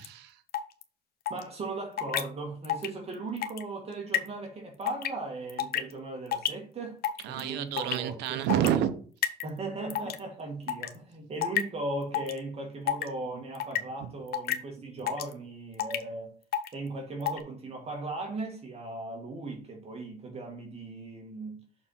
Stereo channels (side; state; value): both; normal; correlation 0.18